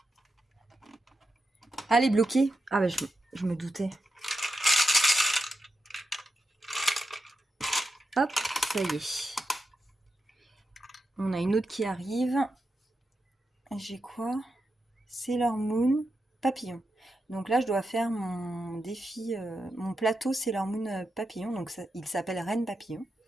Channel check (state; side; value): normal; both; correlation 0.88